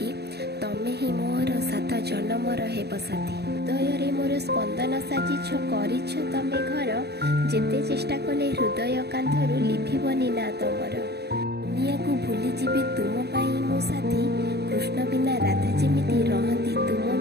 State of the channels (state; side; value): late; left; 0.47 ms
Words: तमे ही मोर सात जन्मर हेब साथी। हृदय रे मोर स्पंदन साजिछ करिछ तमे घर, जेते चेष्टा कले हृदय कांधरू लिभिबनी ना तमर। दुनिया को भूली जीवे तुम पाई मो साथी, कृष्ण बिना राधा जेमिति रहंती तुम